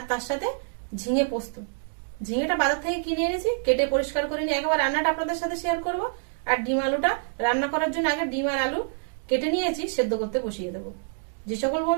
তার সাথে ঝিঙে পোস্ত। ঝিঙেটা বাজার থেকে কিনে এনেছি, কেটে পরিষ্কার করে নিয়ে একবার রান্নাটা আপনাদের সাথে শেয়ার করব। আর ডিম আলুটা রান্না করার জন্য আগে ডিম আর আলু কেটে নিয়েছি, সেদ্ধ করতে বসিয়ে দেবো। যে সকল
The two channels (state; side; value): silent; left; digital silence